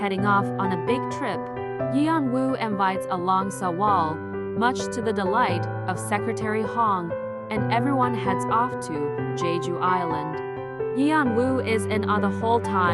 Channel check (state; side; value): identical; both; correlation 1.00